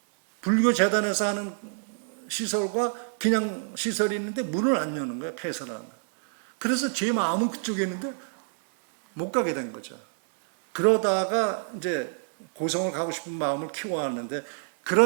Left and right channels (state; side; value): silent; left; 60 dB below the other